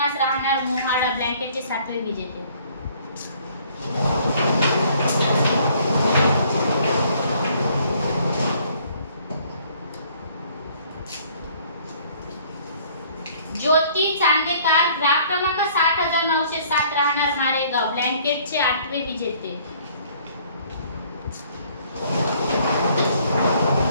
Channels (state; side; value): inverted; both; correlation -0.59